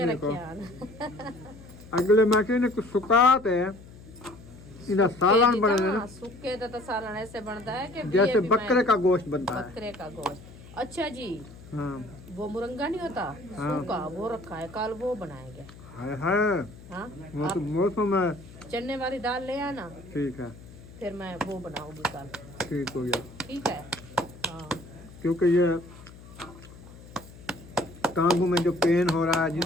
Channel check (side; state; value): left; noise; hum, 19 dB below the sound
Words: देखो रखे हैं। अगले मैं कहने कुछ सुकाते हैं इधर सालन बने दे ना, सूखे तो सालन ऐसे बनता है कि जैसे भी बकरे का गोश्त बनता है। बकरे का गोश्त। अच्छा जी, हाँ वो मुरंगा नहीं होता हाँ। सूखा, वो रखा है, कल वो बनाएंगे। है हाँ, वो तो आप मौसम है। चने वाली दाल ले आना, ठीक है, फिर मैं वो बनाऊंगी कल। ठीक हो गया। ठीक है। हाँ क्योंकि ये टांगों में जो पेन हो रहा है,